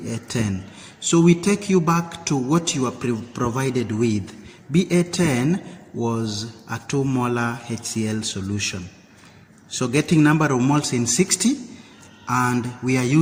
So we take you back to what you are provided with. BA10 was a 2 molar HCl solution. So getting number of moles in 60, and we are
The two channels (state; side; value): identical; both; correlation 1.00